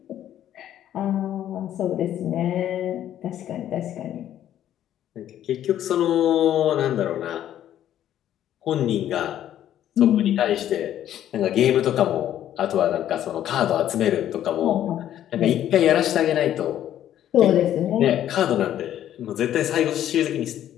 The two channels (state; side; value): quieter; right; 11.4 dB